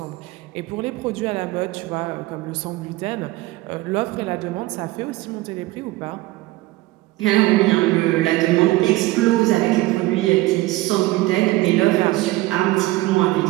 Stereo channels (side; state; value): left; quieter; 18.9 dB